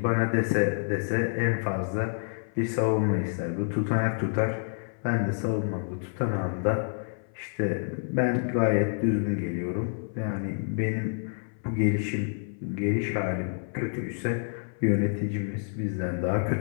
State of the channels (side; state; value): right; silent; 58 dB below the other